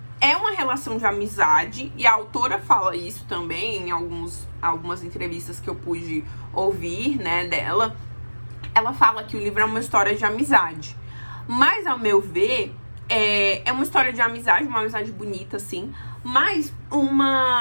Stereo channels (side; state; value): both; inverted; correlation -1.00